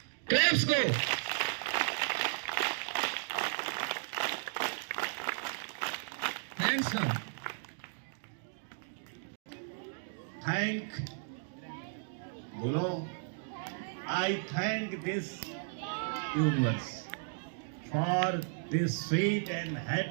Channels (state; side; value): silent; left; digital silence